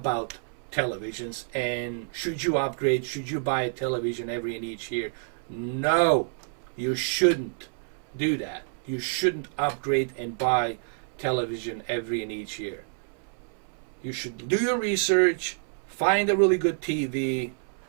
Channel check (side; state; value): left; silent; 59 dB below the other